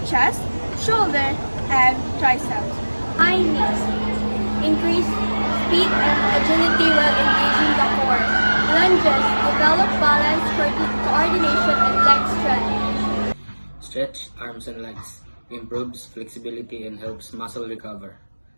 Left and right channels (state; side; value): inverted; both; correlation -1.00